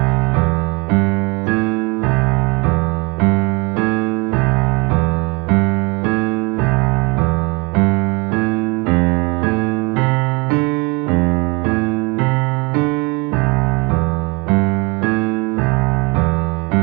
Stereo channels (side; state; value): left; quieter; 27.3 dB